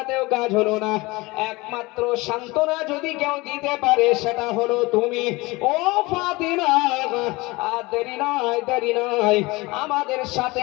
কাজ হলো না। একমাত্র সান্ত্বনা যদি কেউ দিতে পারে সেটা হলো তুমি, ও ফাতিমা। আর দেরি নয়, দেরি নয়, আমাদের সাথে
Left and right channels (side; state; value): right; quieter; 22.8 dB